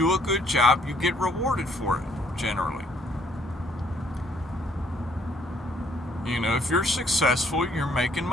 a good job, you get rewarded for it, generally. You know, if you're successful, you're making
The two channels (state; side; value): normal; both; correlation 0.65